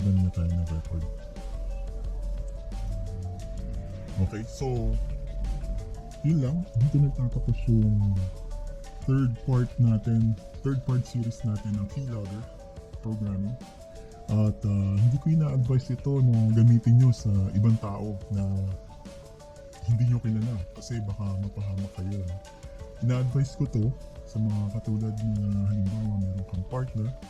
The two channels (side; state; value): both; identical; correlation 1.00